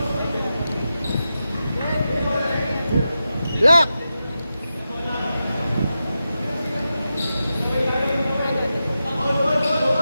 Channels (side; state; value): both; inverted; correlation -0.90